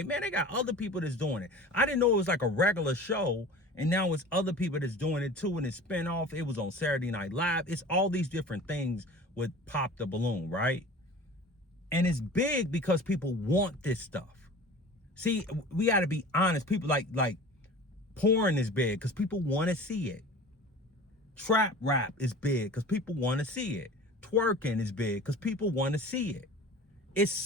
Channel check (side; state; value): both; normal; correlation 0.40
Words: man, they got other people that's doing it. I didn't know it was like a regular show, and now it's other people that's doing it too, and it's spinoff. It was on Saturday Night Live. It's all these different things with Pop the Balloon, right? And it's big because people want this stuff. See, we got to be honest. People like porn is big because people want to see it. Trap rap is big because people want to see it. Twerking is big because people want to see it.